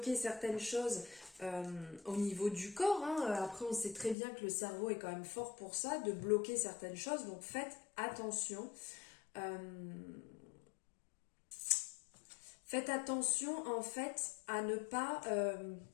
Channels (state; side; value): drops out; right; at 4.2 s